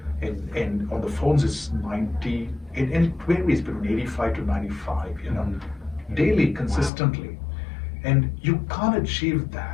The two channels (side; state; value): right; drops out; at 6.9 s